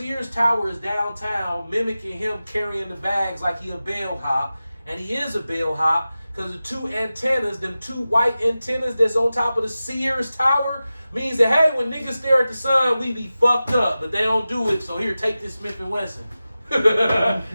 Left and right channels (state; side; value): inverted; both; correlation -0.95